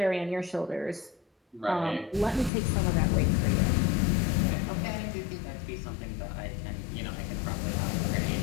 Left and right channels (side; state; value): right; drops out; at 2.5 s